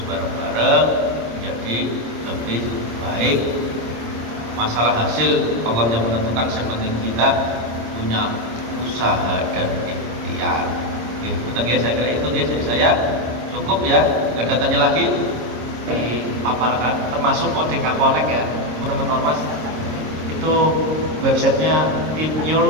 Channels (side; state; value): left; late; 26 ms